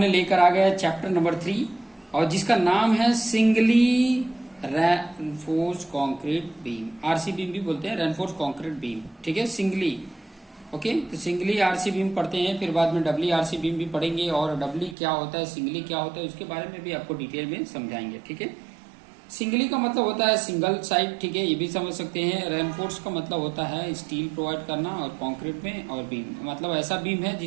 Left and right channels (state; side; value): drops out; left; at 15.0 s